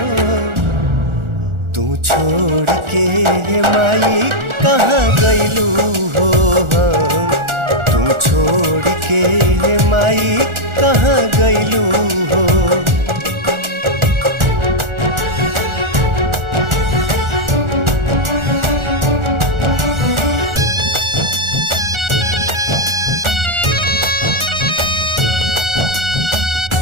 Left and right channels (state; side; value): late; left; 1.4 ms